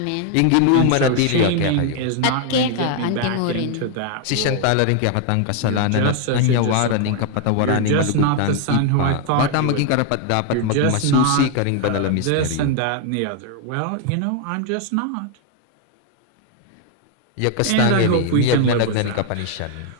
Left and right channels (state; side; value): different; both; correlation 0.00